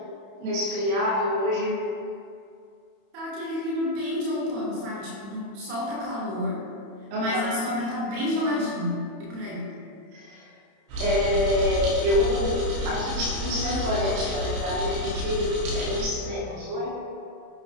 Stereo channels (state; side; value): late; left; 31 ms